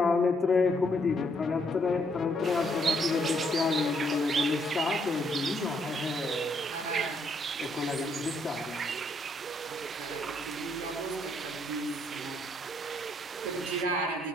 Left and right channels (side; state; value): both; normal; correlation 0.72